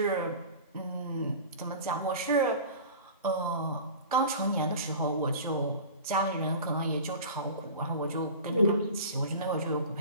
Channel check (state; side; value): inverted; both; correlation -0.37